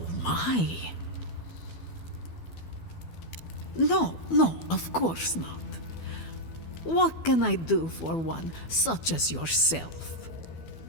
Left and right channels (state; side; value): late; right; 12 ms